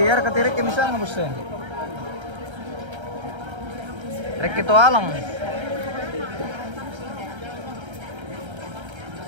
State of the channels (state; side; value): late; left; 1.3 ms